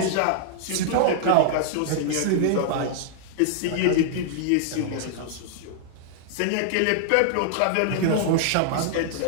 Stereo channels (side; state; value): both; different; correlation -0.01